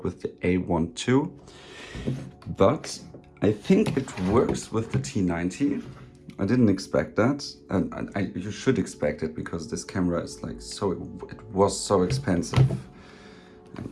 with the A1 too. But I think it works with the T90. I didn't expect that, and you should expect it because this camera is like so, it was so expensive. And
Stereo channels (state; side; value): identical; both; correlation 1.00